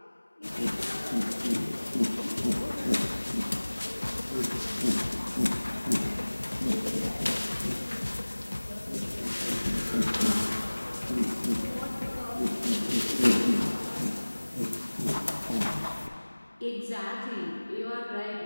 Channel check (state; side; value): inverted; both; correlation -1.00